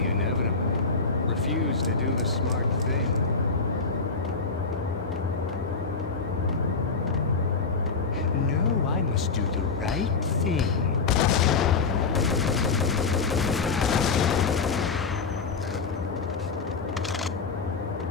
inevitable. Refuse to do the smart thing. No, I must do the right thing.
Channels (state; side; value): quieter; right; 4.6 dB